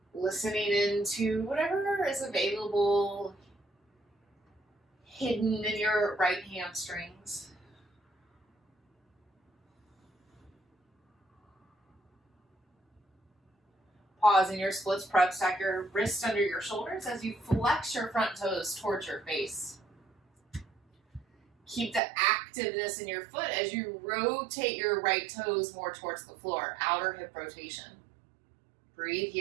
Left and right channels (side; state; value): left; drops out; at 22.0 s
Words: Listening into whatever is available, hidden in your right hamstrings. Pause in your splits prep, stack your wrists under your shoulders as you flex your front toes towards your face. Keep the activeness in your foot as you rotate your right toes more towards the floor, outer hip rotation. Breathe